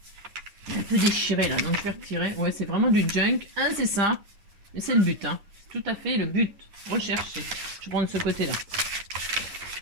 Il est un peu déchiré, là, donc je vais retirer. Ouais, c'est vraiment du junk. C'est ça. Mais c'est le but, hein. Tout à fait le but. Rechercher. Je vais prendre ce côté-là.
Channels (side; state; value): left; late; 10 ms